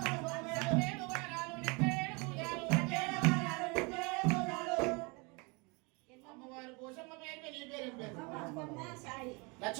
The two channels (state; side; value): quieter; left; 29.5 dB